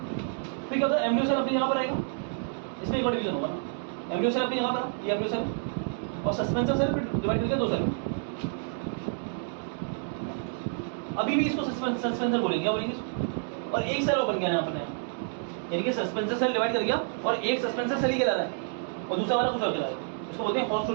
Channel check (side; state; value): left; silent; digital silence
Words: फिर क्या होता है, एम्ब्रियो सेल अपनी जगह पर आएगा, इसमें एक और डिवीजन होगा ना, एम्ब्रियो सेल अपनी जगह पर, ये एम्ब्रियो सेल, और सस्पेंसर सेल फिर डिवाइड करके दो सेल। अभी भी इसको सस्पेंसर बोलेंगे, क्या बोलेंगे इसको। और एक सेल और बन गया यहाँ पर, यानी कि सस्पेंसर सेल डिवाइड कर गया और एक सस्पेंसर सेल ही कहला रहा है और दूसरा वाला कुछ और कहला रहा है। इसको बोलते हैं